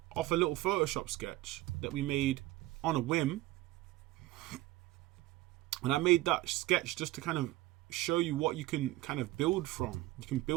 off a little Photoshop sketch that we made on a whim, and I made that sketch just to kind of show you what you can kind of build from. You can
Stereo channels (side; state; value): left; quieter; 17.4 dB